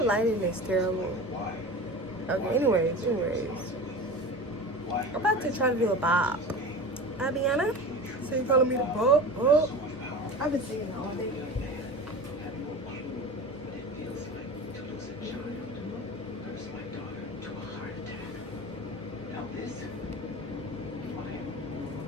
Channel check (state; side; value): normal; both; correlation 0.32